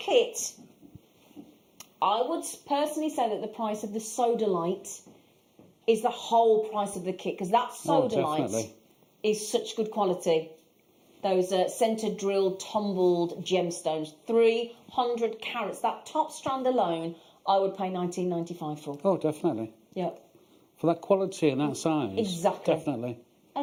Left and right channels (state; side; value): identical; both; correlation 1.00